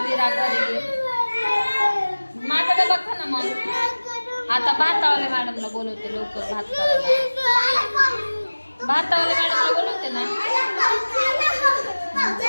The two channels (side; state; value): both; inverted; correlation -1.00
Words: विरा घरी. माझा डबा खा ना मग. आता भातावाल्या मॅडमला बोलवते लवकर भात करायला. भातावाल्या मॅडमला बोलवते ना.